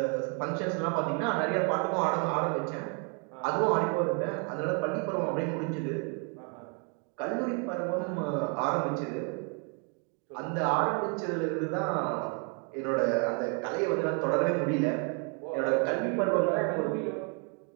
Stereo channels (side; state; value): left; quieter; 38.2 dB